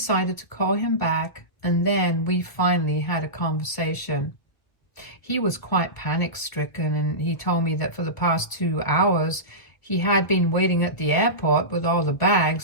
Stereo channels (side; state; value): right; late; 1.7 ms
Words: to call him back, and then we finally had a conversation. He was quite panic-stricken, and he told me that for the past 2 hours, he had been waiting at the airport with all the